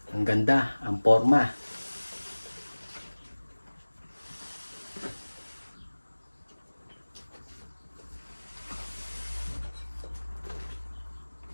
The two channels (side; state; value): both; inverted; correlation -1.00